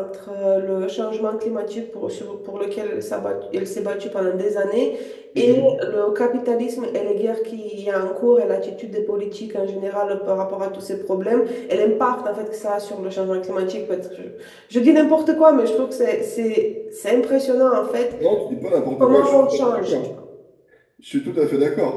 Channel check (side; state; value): both; identical; correlation 1.00